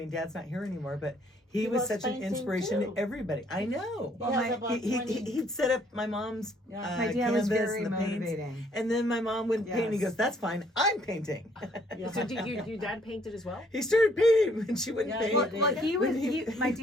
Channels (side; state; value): both; normal; correlation 0.64